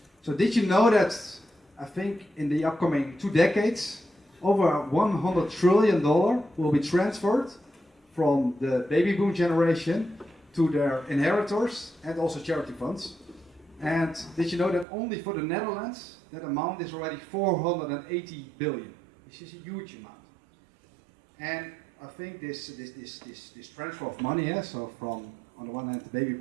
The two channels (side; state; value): left; drops out; at 14.9 s